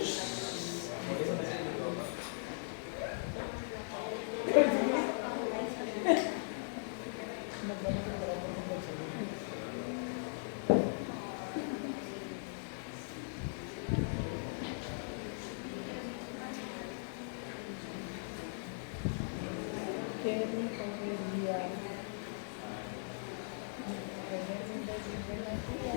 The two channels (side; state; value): right; silent; digital silence